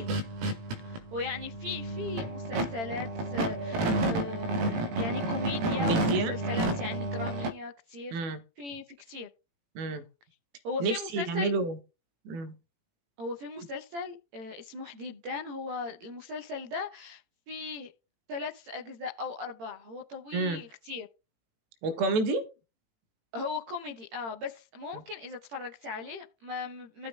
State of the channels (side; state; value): left; late; 18 ms